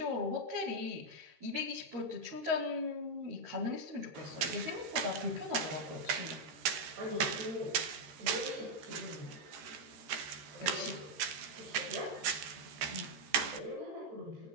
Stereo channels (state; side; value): late; left; 14 ms